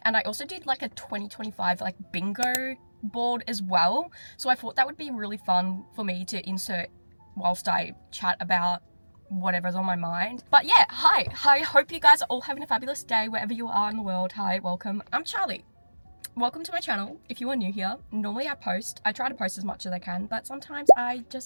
and I also did like a 2025 like bingo board as well. So I thought that would be really fun for me to insert whilst I chat about whatever's on my mind. But yeah, hi, hope you guys are all having a fabulous day wherever you are in the world. Hi, welcome. I'm Charlie. Welcome to my channel. If you are new here, normally I try to post as much as I can, but sometimes I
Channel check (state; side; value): inverted; both; correlation -1.00